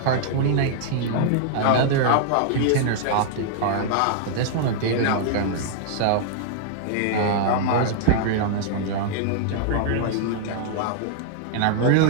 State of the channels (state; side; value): different; both; correlation -0.01